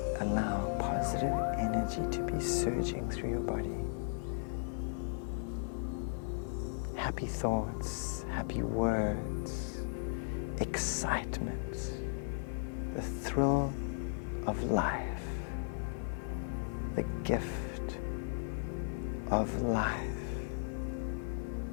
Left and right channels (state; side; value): silent; right; 54 dB below the other